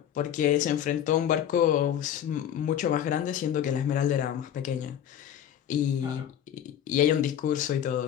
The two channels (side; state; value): right; quieter; 10.1 dB